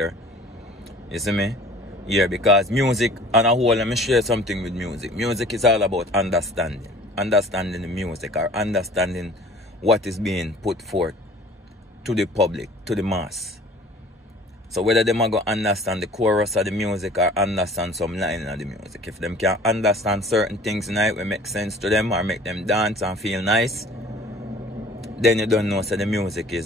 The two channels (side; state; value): both; normal; correlation 0.49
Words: You see me? Yeah, because music, on a whole, let me share something with music. Music is all about understanding. Understanding the music, or understanding what is being put forth to the public, to the mass. So whether them are going to understand the chorus of the music or understand some line of the music. If them can understand certain things in it will make sense to them or make them dance and feel nice, then you don't know so the music